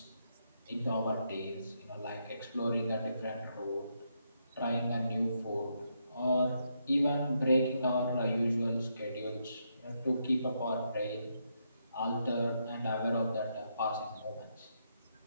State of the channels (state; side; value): inverted; both; correlation -0.79